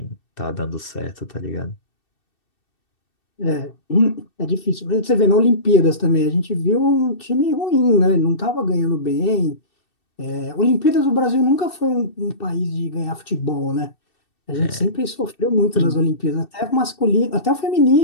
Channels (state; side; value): late; right; 2.7 ms